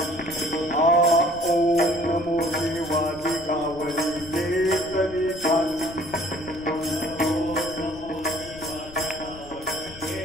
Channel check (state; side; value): noise; left; rumble, 17 dB below the sound